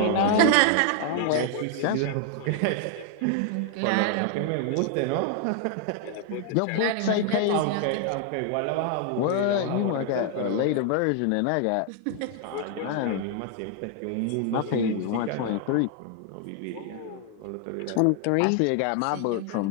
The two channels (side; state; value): both; different; correlation 0.00